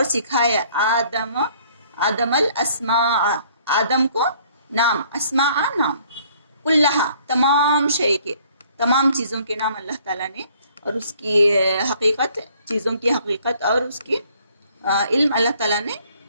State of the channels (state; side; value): inverted; both; correlation -0.60